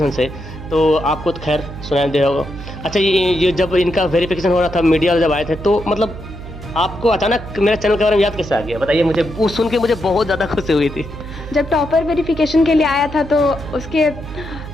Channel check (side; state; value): right; noise; hum, 12 dB below the sound